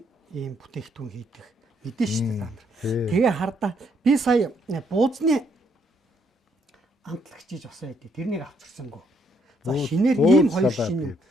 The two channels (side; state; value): both; normal; correlation 0.72